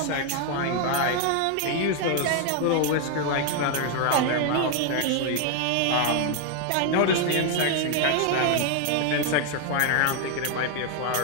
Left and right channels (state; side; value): different; both; correlation 0.01